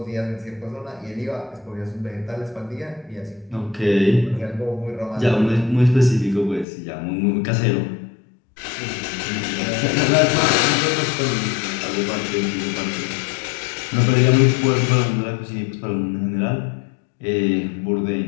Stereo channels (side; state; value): right; drops out; at 6.7 s